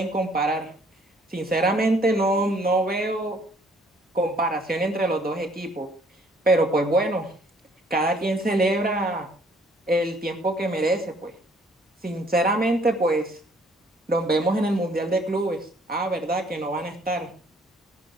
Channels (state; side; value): normal; both; correlation 0.61